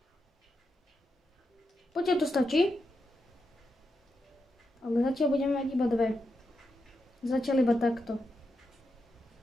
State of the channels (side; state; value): both; normal; correlation 0.86